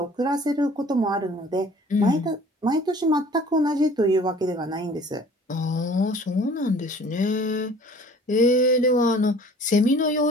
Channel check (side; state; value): both; normal; correlation 0.50